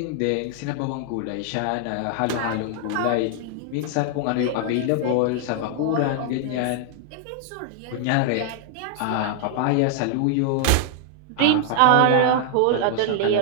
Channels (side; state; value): both; different; correlation 0.00